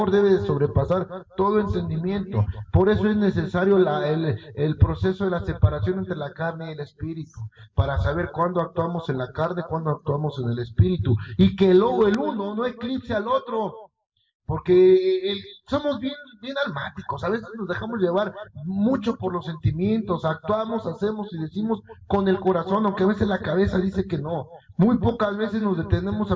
debe de sobrepasar todo entendimiento. Por eso es necesario el proceso de la separación entre la carne y el espíritu, para saber cuándo actuamos en la carne, cuándo actuamos en el espíritu, y que luego el uno no eclipse al otro. Porque somos bien almáticos, a veces nos dejamos llevar mucho por los sentimientos, actuamos, hacemos y decimos con el corazón, aunque a veces la cabeza dice que no. Muy pocas veces nos detenemos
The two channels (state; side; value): identical; both; correlation 1.00